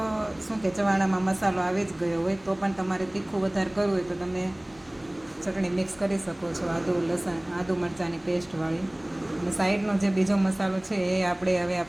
શું કે ચવાણામાં મસાલો આવી જ ગયો હોય. તો પણ તમારે તીખું વધારે કરવું હોય તો તમે ચટણી મિક્સ કરી શકો છો, આદુ મરચાંની પેસ્ટવાળી. અને સાઈડનો જે બીજો મસાલો છે એ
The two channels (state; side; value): noise; left; hum, 29 dB below the sound